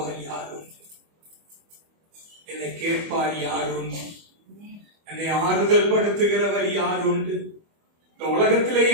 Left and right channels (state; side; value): late; left; 25 ms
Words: யாரும், என்னை கேட்பார் யாரும், என்னை ஆறுதல் படுத்துகிறவர் யார் உண்டு? இந்த உலகத்திலே